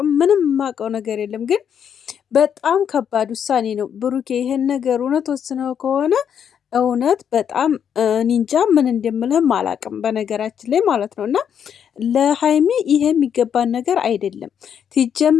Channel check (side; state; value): right; quieter; 8.3 dB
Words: ምንም የማውቀው ነገር የለም። ግን በጣም ከባድ ውሳኔ ነው ብሩኬ። ይሄን ነገር እውነት ወስነው ከሆነ እውነት በጣም ኒንጃ ምን እንደምልህም አላቅም፣ በነገራችን ላይ ማለት ነው። እና ለሀይሚ ይሄ የሚገባን ነገር አይደለም